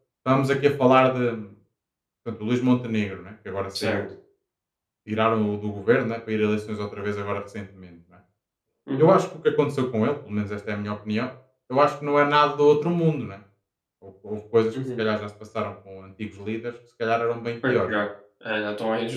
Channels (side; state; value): both; identical; correlation 1.00